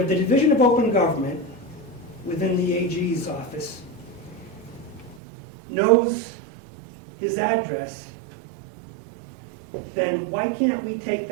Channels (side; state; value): left; drops out; at 5.2 s